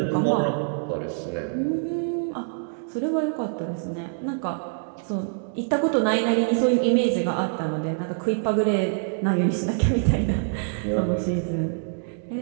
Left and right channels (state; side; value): silent; left; digital silence